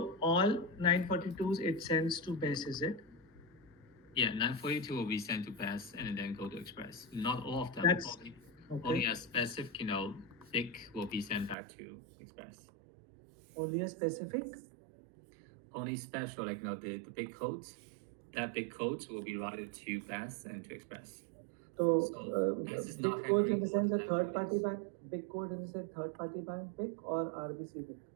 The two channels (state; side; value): drops out; left; at 11.6 s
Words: all 942s it sends to BES, is it? Yeah, 942 will be sent to BES and then go to Express. Not all of them. That's Only okay. a specific, thick will be sent back to Express. Only a specific. Only special, like the big codes. That big codes will be routed to BES and to Express. So BES is big not codes in the handling sense a all the third party codes. bank. Big code in the sense third party bank big or RBC big.